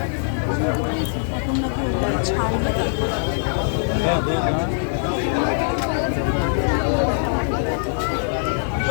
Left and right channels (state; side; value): silent; right; digital silence